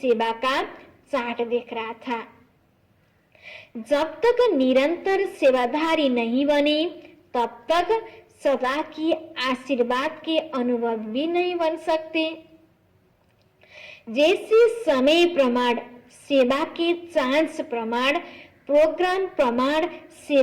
का चार्ट देख रहा था। जब तक निरंतर सेवाधारी नहीं बने तब तक सदा की आशीर्वाद के अनुभव भी नहीं बन सकते। जैसे समय प्रमाण सेवा के चांस प्रमाण प्रोग्राम प्रमाण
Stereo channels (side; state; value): both; identical; correlation 1.00